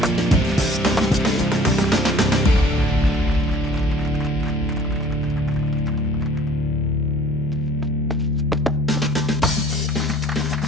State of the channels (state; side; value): normal; both; correlation 0.51